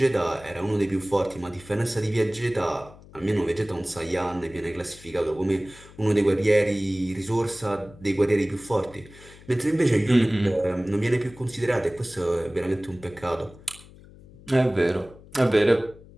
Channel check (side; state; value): left; noise; hum, 21 dB below the sound